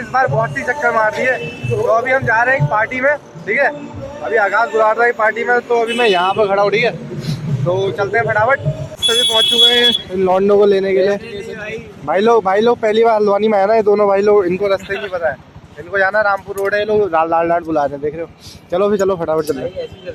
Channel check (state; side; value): identical; both; correlation 1.00